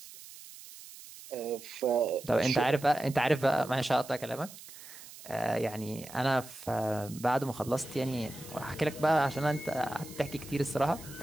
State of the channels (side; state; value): right; noise; hiss, 16 dB below the sound